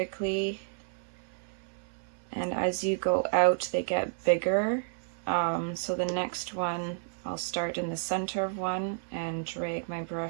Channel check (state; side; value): silent; left; 56 dB below the other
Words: and as you go out they get bigger. So the next one, I'll start in the center of one and drag my